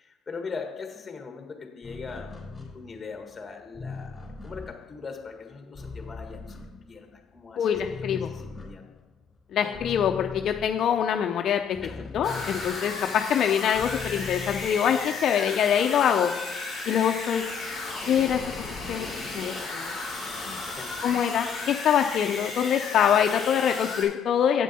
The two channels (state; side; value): quieter; right; 7.7 dB